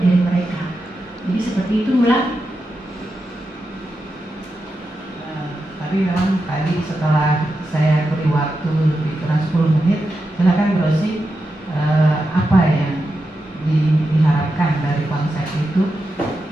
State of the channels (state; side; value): normal; both; correlation 0.88